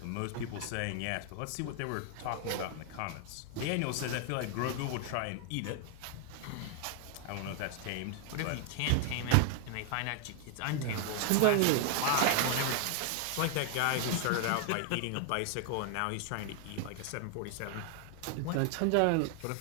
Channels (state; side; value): different; both; correlation 0.00